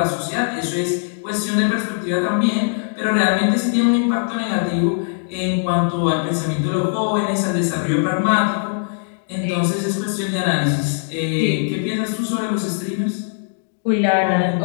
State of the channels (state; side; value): silent; right; digital silence